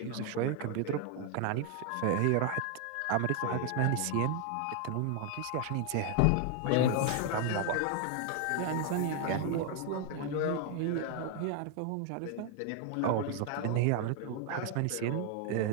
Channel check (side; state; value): both; different; correlation 0.00